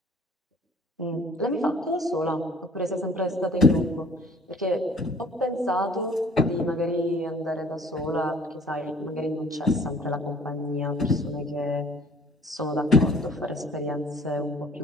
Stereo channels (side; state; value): both; normal; correlation 0.53